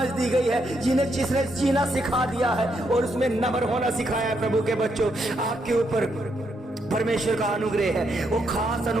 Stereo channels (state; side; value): normal; both; correlation 0.78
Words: दी गई है, जिसने जीना सिखा दिया है और उसमें नम्र होना सिखाया है। प्रभु के बच्चों, आपके ऊपर परमेश्वर का अनुग्रह है, वो खास